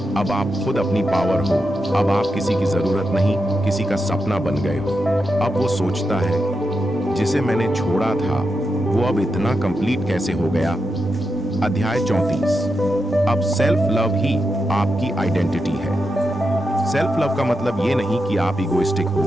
अब आप खुद अपनी पावर हो। अब आप किसी की जरूरत नहीं, किसी का सपना बन गए हो। अब वो सोचता है, जिसे मैंने छोड़ा था वो अब इतना कंप्लीट कैसे हो गया? अध्याय 34। अब सेल्फ लव ही आपकी आइडेंटिटी है। सेल्फ लव का मतलब ये नहीं कि आप इगोइस्टिक हो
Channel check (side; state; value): both; normal; correlation 0.87